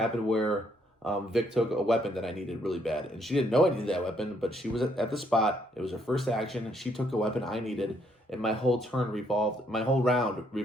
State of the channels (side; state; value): both; normal; correlation 0.70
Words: where Vic took a weapon that I needed really bad. And she didn't know I needed that weapon, but she was at the spot. It was her first action. She took a weapon I needed, and my whole round revolved